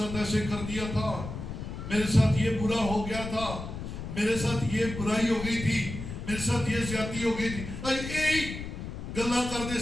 ایسے کر دیا تھا, میرے ساتھ یہ برا ہو گیا تھا, میرے ساتھ یہ برائی ہو گئی تھی, میرے ساتھ یہ زیادتی ہو گئی تھی. یہی گلا کر دے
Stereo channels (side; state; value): left; noise; rumble, 8 dB below the sound